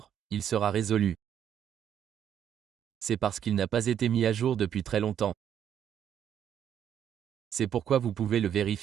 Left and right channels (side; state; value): left; quieter; 9.3 dB